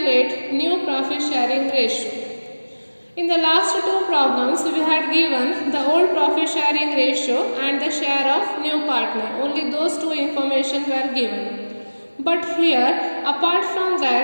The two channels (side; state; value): both; inverted; correlation -1.00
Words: new profit sharing ratio. In the last two problems, we had given the old profit sharing ratio and the share of new partner. Only those two information were given. But here, apart from